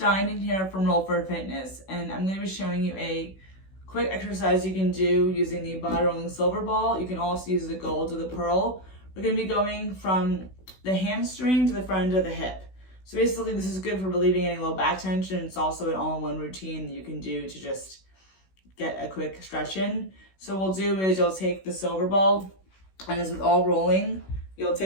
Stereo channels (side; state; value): right; late; 16 ms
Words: in here from Roll for Fitness, and I'm going to be showing you a quick exercise you can do using the body rolling silver ball. You can also use the gold or the pearl. We're going to be going from the hamstring to the front of the hip. So basically this is good for relieving any low back tension. It's also an all-in-one routine that you can do to just get a quick stretch in. So what we'll do is you'll take the silver ball, and as with all rolling, you'll